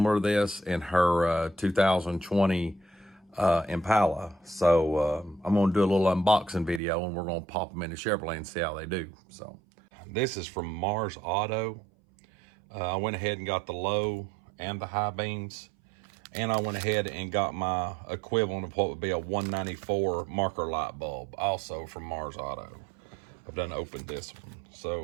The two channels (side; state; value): left; drops out; at 6.8 s